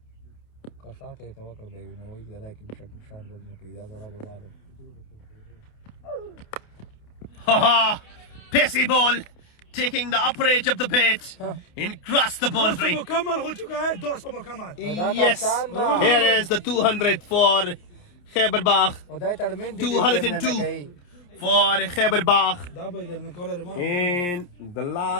Haha! Pacey ball taking the upper edge of the bat and cross the boundary. Yes, here is the 200 for Khyber Bagh. 202 for Khyber Bagh. And the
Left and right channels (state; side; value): late; right; 28 ms